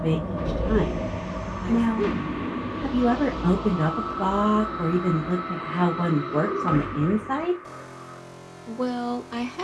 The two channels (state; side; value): identical; both; correlation 1.00